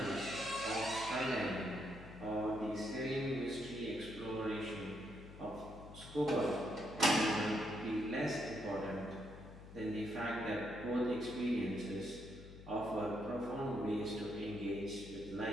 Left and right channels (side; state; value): left; noise; hum, 15 dB below the sound